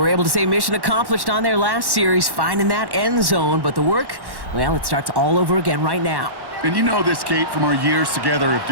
able to say mission accomplished on their last series, finding that end zone, but the work, well, it starts all over again right now. And you know this, Kate, from our years together of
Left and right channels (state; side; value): late; left; 1.1 ms